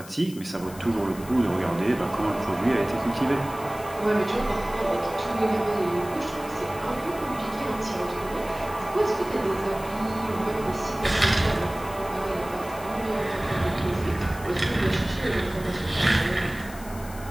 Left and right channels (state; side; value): noise; left; hiss, 18 dB below the sound